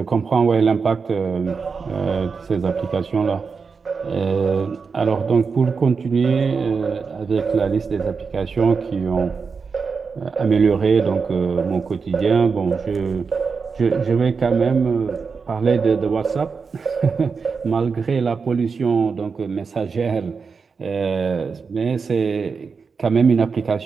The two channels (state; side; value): quieter; left; 5.2 dB